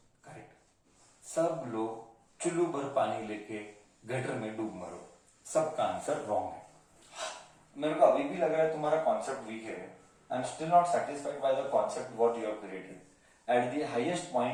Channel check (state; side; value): identical; both; correlation 1.00